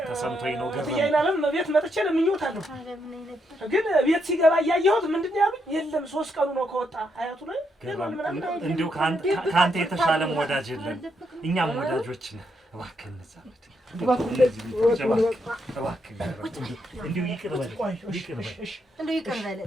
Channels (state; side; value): normal; both; correlation 0.78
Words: ተሰምቶኝ ነው ገረመኝ። ያይናለም ቤት መጥቼ ለምኜውታለሁ። ግን ቤት ሲገባ እያየሁት ምንድነው ያሉኝ? የለም 3 ቀኑ ነው ከወጣ አያቱ ላይ እንደው ካንተ የተሻለም ወዳጅ የለም። እኛም ወዳጆች ነን። እባክህ እንዛመድ